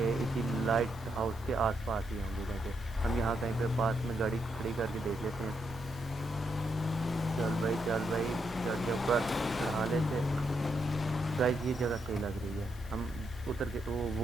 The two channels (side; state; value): both; normal; correlation 0.80